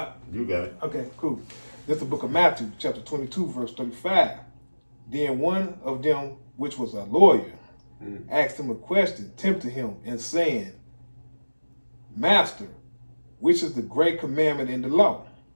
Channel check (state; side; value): inverted; both; correlation -1.00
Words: got it. Okay, cool. This is the book of Matthew, chapter 22, verse 35. Then one of them, which was a lawyer, asked him a question, tempting him, and saying, Master, which is the great commandment in the law?